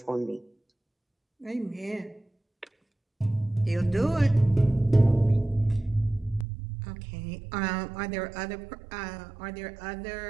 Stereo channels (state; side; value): drops out; left; at 6.5 s